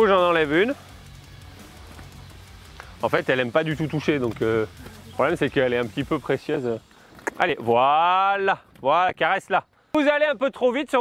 j'en enlève une. En fait, elle n'aime pas du tout toucher, donc le problème, c'est qu'elle est un petit peu précieuse. Allez, voilà, voilà, caresse-la. Vous allez un peu trop vite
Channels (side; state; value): both; identical; correlation 1.00